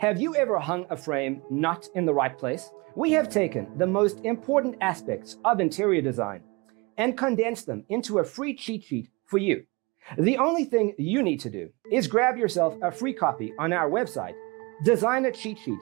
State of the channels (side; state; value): left; quieter; 27.0 dB